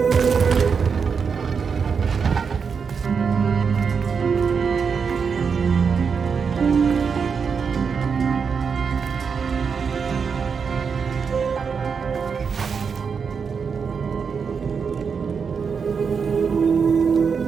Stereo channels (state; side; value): quieter; left; 6.0 dB